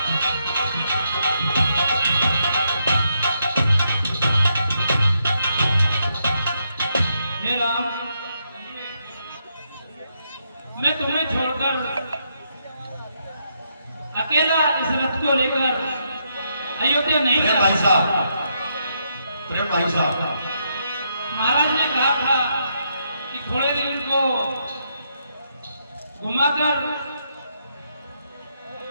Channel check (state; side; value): inverted; both; correlation -0.78